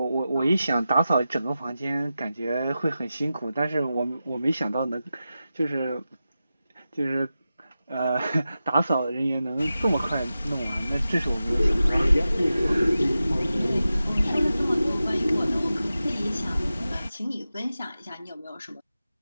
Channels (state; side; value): inverted; both; correlation -0.93